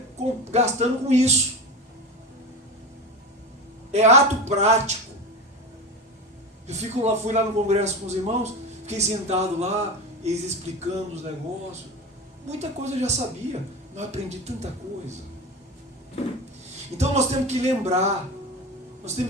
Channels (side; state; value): both; normal; correlation 0.25